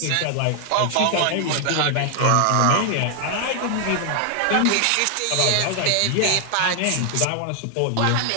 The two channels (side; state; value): both; different; correlation 0.00